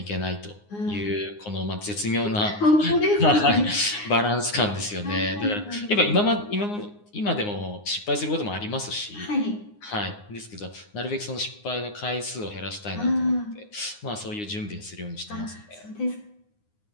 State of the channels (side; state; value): right; late; 9.7 ms